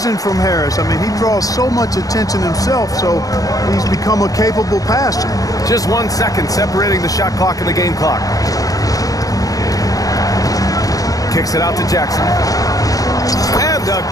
from Harris. I mean, he draws so much attention himself, so he's become a capable passer. Just 1 second separating the shot clock and the game clock. Kicks it out to Jackson. And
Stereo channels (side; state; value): right; late; 0.17 ms